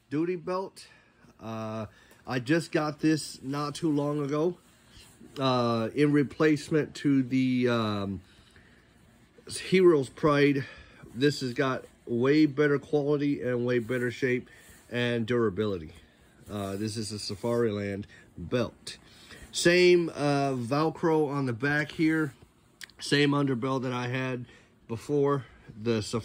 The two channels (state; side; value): identical; both; correlation 1.00